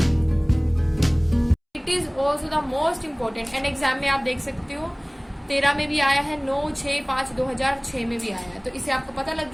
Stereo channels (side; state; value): both; identical; correlation 1.00